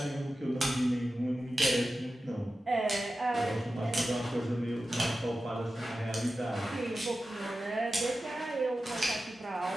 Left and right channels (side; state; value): both; normal; correlation 0.93